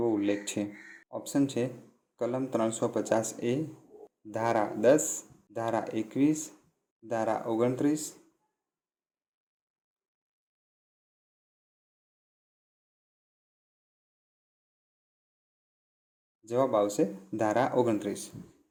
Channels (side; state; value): both; identical; correlation 1.00